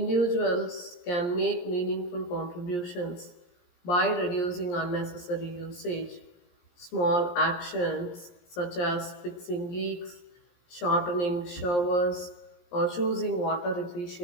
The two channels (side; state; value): right; late; 17 ms